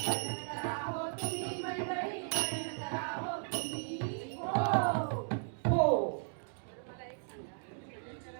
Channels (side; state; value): left; silent; digital silence